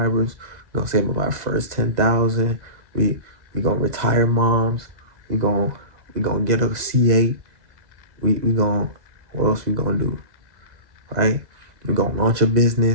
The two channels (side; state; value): left; late; 2.0 ms